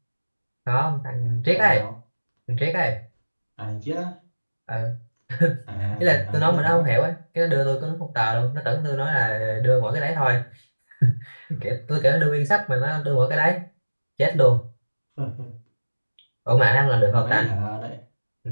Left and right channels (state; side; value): inverted; both; correlation -1.00